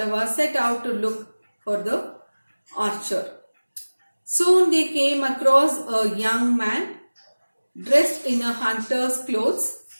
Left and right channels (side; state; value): both; inverted; correlation -1.00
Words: set out to look for the archer. Soon they came across a young man dressed in a hunter's clothes